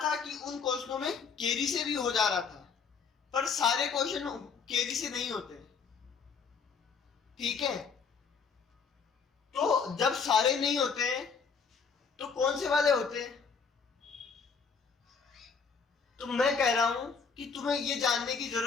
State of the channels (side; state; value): right; quieter; 5.6 dB